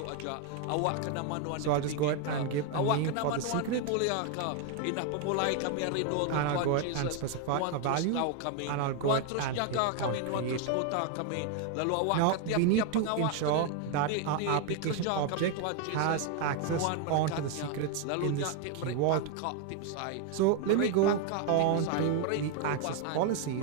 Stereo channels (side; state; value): both; different; correlation 0.01